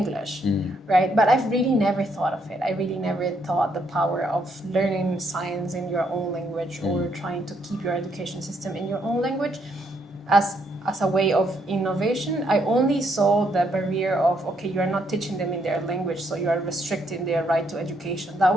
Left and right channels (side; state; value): both; normal; correlation 0.73